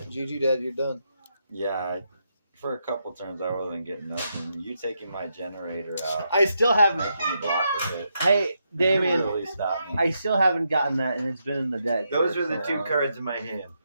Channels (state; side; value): inverted; both; correlation -0.82